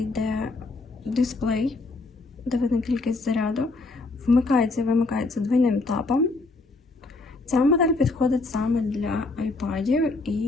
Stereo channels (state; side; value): quieter; right; 3.4 dB